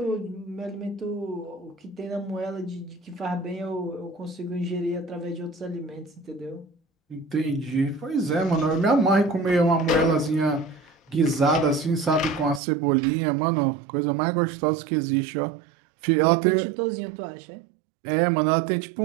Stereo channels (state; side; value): drops out; left; at 12.6 s